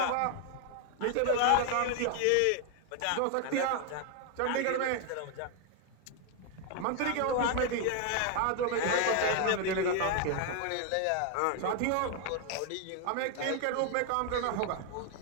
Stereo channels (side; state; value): both; different; correlation 0.00